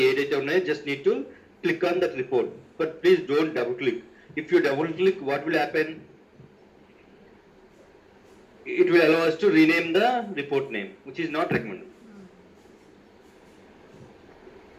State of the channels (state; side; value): identical; both; correlation 1.00